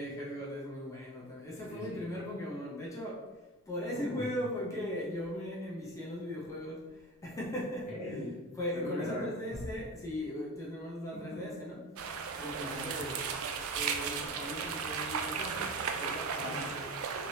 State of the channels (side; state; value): both; normal; correlation 0.29